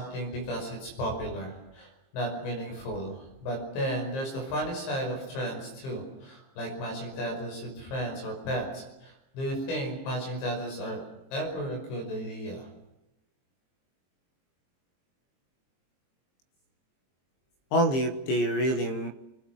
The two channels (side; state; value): right; late; 23 ms